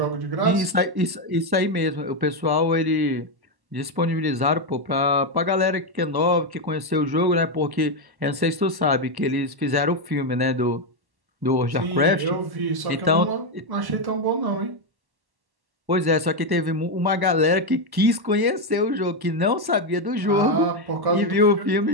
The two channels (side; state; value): left; late; 1.1 ms